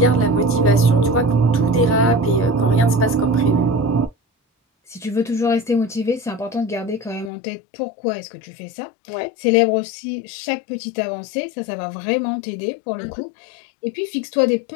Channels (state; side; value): drops out; right; at 7.3 s